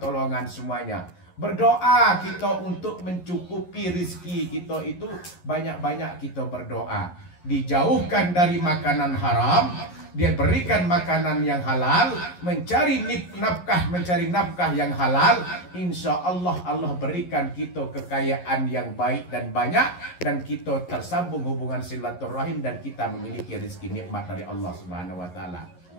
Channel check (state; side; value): late; right; 11 ms